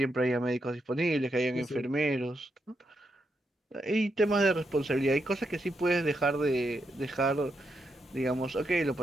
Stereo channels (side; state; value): both; normal; correlation 0.82